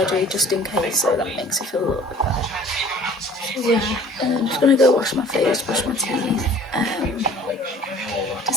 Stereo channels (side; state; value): both; normal; correlation 0.50